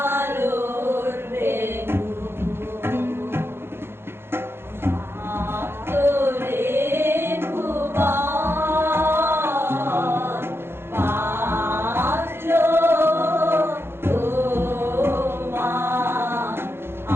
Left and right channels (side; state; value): left; late; 0.11 ms